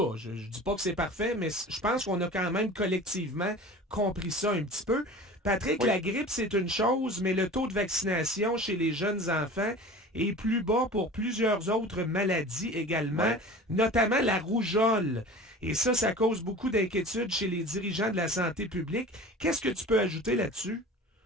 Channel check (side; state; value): both; normal; correlation 0.39